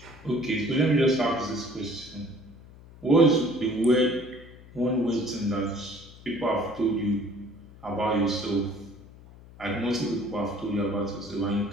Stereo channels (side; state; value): left; noise; hum, 20 dB below the sound